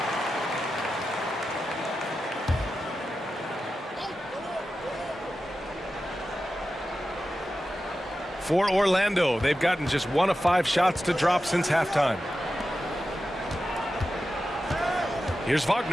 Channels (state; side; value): normal; both; correlation 0.92